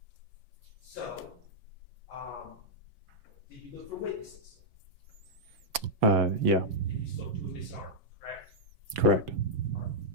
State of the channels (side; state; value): left; late; 6.0 ms